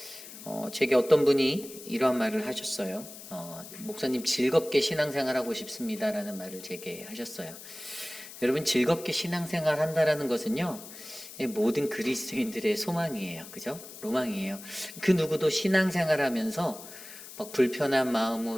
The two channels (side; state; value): left; noise; hiss, 15 dB below the sound